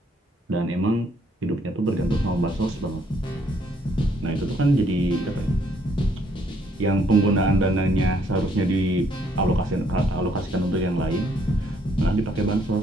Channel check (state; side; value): normal; both; correlation 0.68